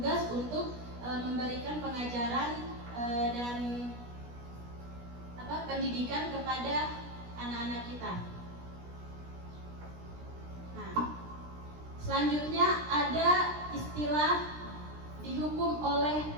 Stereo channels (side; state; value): left; late; 17 ms